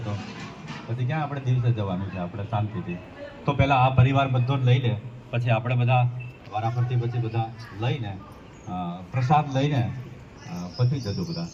તો પછી ક્યાં આપણે દિવસે જવાનું છે. આપણે શાંતિથી તો પહેલાં આ પરિવાર બધો જ લઈ લે, પછી આપણે બધા વારાફરતી પછી બધા લઈને પ્રસાદ લઈને પછી જજો બધા.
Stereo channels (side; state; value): both; identical; correlation 1.00